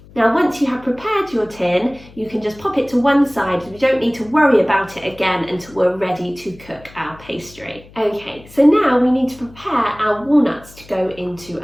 Now, once you have prepared your tin, you can just pop it to one side. We don't need to worry about it again until we're ready to cook our pastry. Okay, so now we need to prepare our walnuts to go into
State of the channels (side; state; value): left; noise; hum, 22 dB below the sound